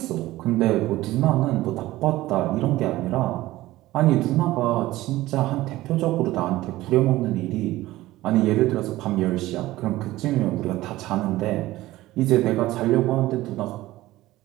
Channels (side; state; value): left; quieter; 17.0 dB